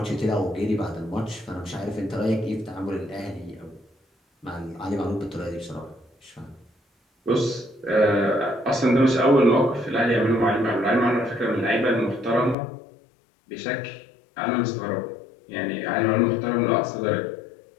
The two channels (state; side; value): drops out; right; at 12.6 s